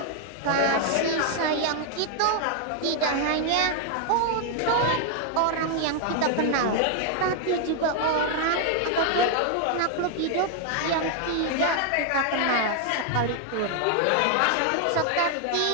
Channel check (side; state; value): both; different; correlation 0.00